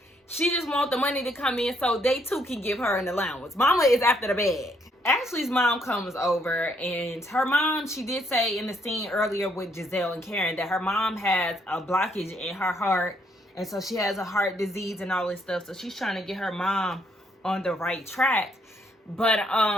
She just want the money to come in so they too can give her an allowance. Mama is after the bag. Ashley's mom comes over, and her mom, she did say in the scene earlier with Giselle and Karen that her mom has a blockage in her heart, and so she has a heart disease and all this stuff. So she's trying to get her mom on the right track. But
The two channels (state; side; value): normal; both; correlation 0.71